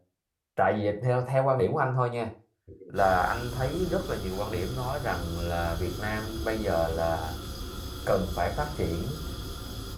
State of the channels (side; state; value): both; identical; correlation 1.00